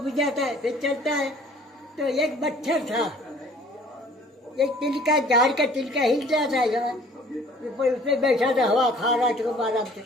जाता है, फिर चलता है। तो एक मच्छर था, एक तिलका, झाड़ का तिलका हिल रहा था, उसमें बैठा था, हवा खा रहा था खूब आराम से।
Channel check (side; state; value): both; normal; correlation 0.53